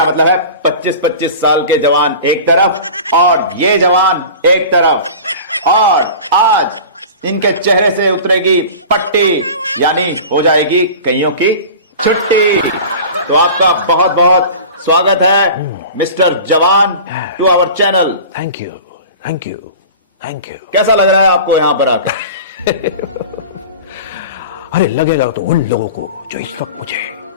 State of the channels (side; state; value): both; inverted; correlation -0.37